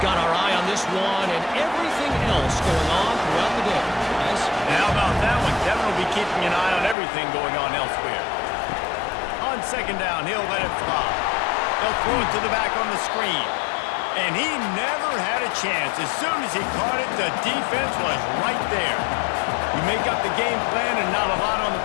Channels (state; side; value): drops out; right; at 7.0 s